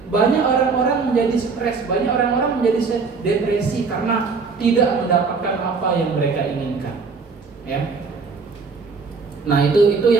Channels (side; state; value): left; quieter; 4.7 dB